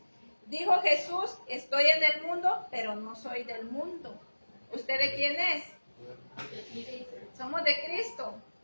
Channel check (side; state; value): both; inverted; correlation -1.00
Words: Dijo Jesús, estoy en el mundo, pero no soy del mundo. ¿Usted de quién es? Somos de Cristo.